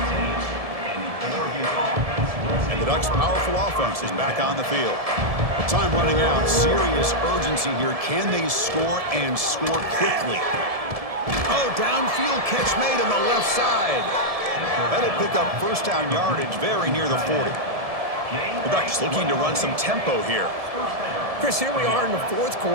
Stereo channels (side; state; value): left; late; 1.7 ms